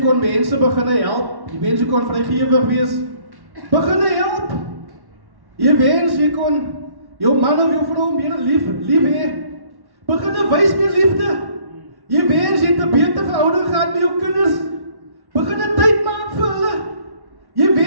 mense begin help. Jy wens jy kon vrygewig wees. Begin help. Jy wens jy kon jou man of jou vrou meer lief hê. Begin wys meer liefde. Jy wens jy het 'n beter verhouding gehad met jou kinders. Begin 'n tyd maak vir hulle. Jy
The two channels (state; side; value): late; left; 1.1 ms